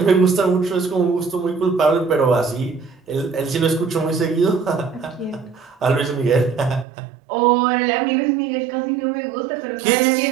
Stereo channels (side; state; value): left; drops out; at 6.9 s